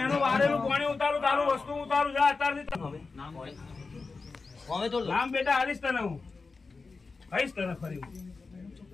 એનું વારેલું પાણી ઉતારું તારું વસ્તુ ઉતારું જા અત્યારથી. નામ બેટા હાલીશ તને હું કહીશ તને ફરી.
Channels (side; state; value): right; quieter; 4.2 dB